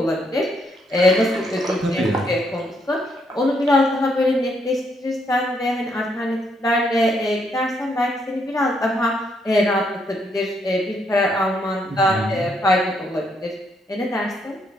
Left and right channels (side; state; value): both; normal; correlation 0.74